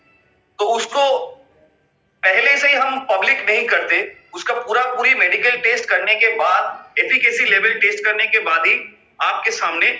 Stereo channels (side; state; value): both; identical; correlation 1.00